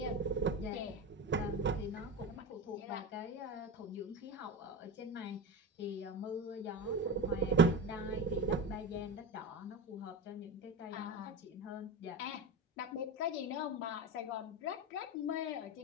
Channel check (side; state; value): both; normal; correlation 0.23